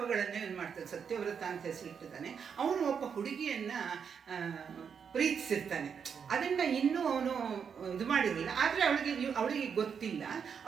ಏನು ಮಾಡ್ತಾನೆ. ಸತ್ಯವ್ರತ ಅಂತ ಹೆಸರಿಟ್ಟಿದ್ದಾನೆ. ಅವನು ಒಬ್ಬ ಹುಡುಗಿಯನ್ನು ಪ್ರೀತಿಸಿರ್ತಾನೆ. ಅದನ್ನು ಇನ್ನೂ ಅವನು ಇದು ಮಾಡಿರಲಿಲ್ಲ. ಆದರೆ ಅವಳಿಗೆ ಗೊತ್ತಿಲ್ಲ.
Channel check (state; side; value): quieter; left; 6.8 dB